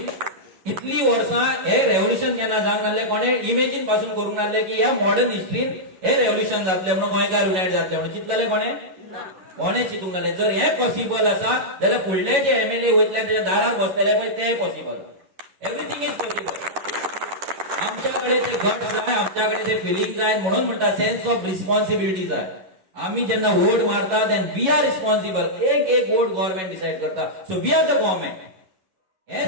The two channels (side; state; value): left; late; 11 ms